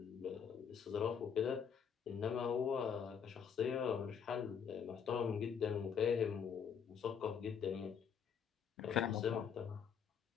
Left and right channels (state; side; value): quieter; right; 7.3 dB